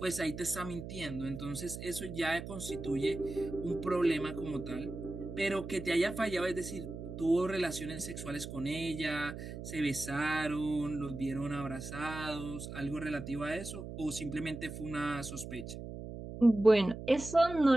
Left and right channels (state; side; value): noise; right; hum, 9 dB below the sound